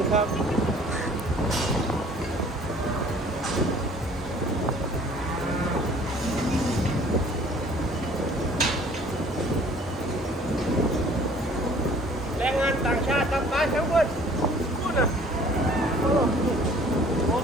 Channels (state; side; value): normal; both; correlation 0.53